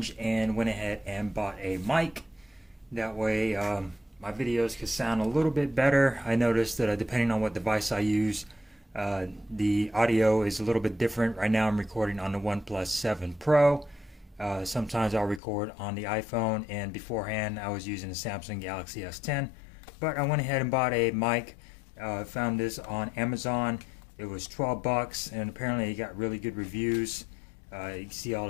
and went ahead and bought a mic. That way my videos could sound a little bit better. I noticed that depending on what device I use, the audio is a little bit different. Right now I'm recording on the OnePlus 7 Pro. Sometimes I'll record on the iPhone, and beforehand I was using the Samsung Galaxy S10. But I went ahead and bought a mic. Found this on Amazon. It was 12 bucks, and apparently it got really good reviews. You can see all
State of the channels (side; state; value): right; drops out; at 15.4 s